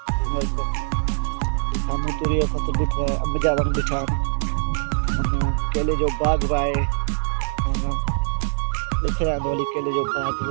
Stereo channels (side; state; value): left; silent; 63 dB below the other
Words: साम्हूं तूरी जो फसल ॾिठो आहे, अंब जा वण ॾिठा आहिनि, केले जो बाग़ बि आहे, ॾिसी रहिया हली केले जो बाग़